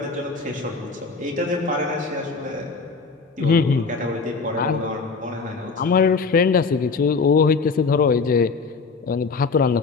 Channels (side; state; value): right; quieter; 4.5 dB